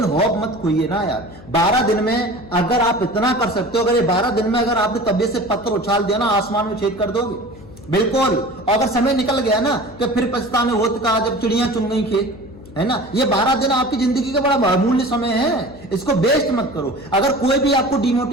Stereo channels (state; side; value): noise; left; hum, 19 dB below the sound